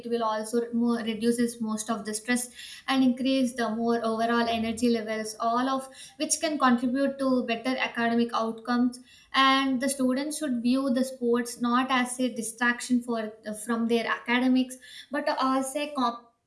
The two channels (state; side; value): identical; both; correlation 1.00